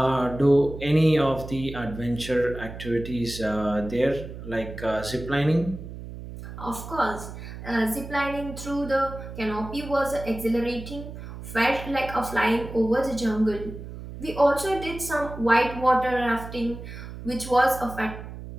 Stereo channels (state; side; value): noise; right; hum, 11 dB below the sound